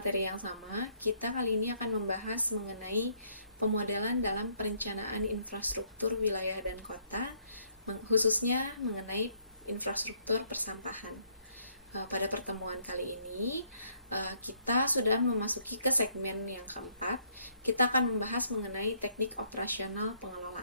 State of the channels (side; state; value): both; inverted; correlation -0.68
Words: yang sama, kita kali ini akan membahas mengenai pemodelan dalam perencanaan infrastruktur wilayah dan kota, khususnya mengenai infrastruktur persampahan. Pada pertemuan kali ini, kita sudah memasuki ke segmen yang keempat. Kita akan membahas mengenai teknik operasional